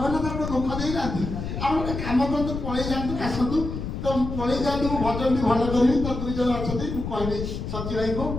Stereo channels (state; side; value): noise; left; rumble, 5 dB below the sound